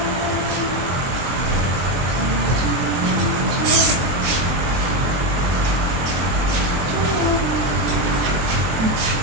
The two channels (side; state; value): left; late; 23 ms